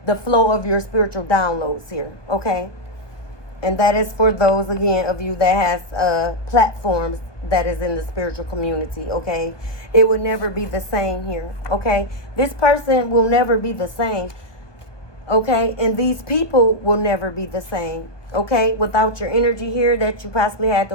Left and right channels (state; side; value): late; right; 1.2 ms